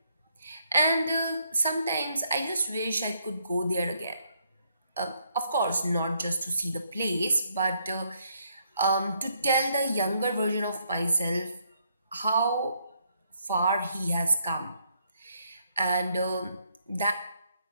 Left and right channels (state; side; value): inverted; both; correlation -0.73